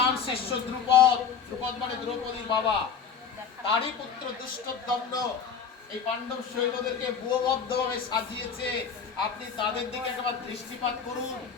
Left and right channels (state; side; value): quieter; right; 6.5 dB